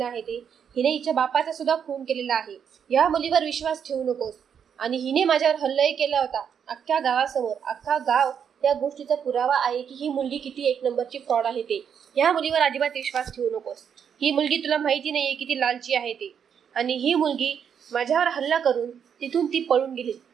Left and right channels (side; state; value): left; quieter; 7.8 dB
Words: आहे ते? हिने हिच्या बापाचा सुद्धा खून केलेला आहे. या मुलीवर विश्वास ठेवू नकोस. आणि हिने माझ्यावर हल्लाही केला होता अख्ख्या गावासमोर. अख्खा गाव या गोष्टीचा पुरावा आहे की ही मुलगी किती एक नंबरची फ्रॉड आहे ते. या मुलीवर अजिबात विश्वास ठेवू नकोस. ही मुलगी तुला माहिती नाहीये किती लालची आहे ते. आणि ही मुलगी माझ्यावर हल्ला करून तिथून ती पळून गेली,